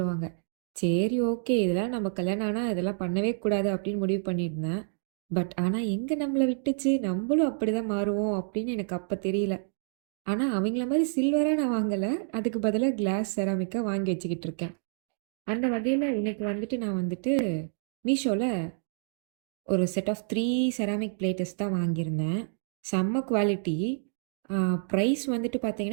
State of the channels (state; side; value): silent; left; digital silence